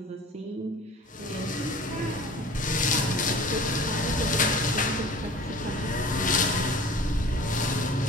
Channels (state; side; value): normal; both; correlation 0.43